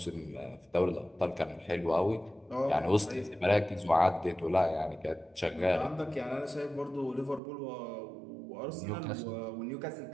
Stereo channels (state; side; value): drops out; left; at 7.4 s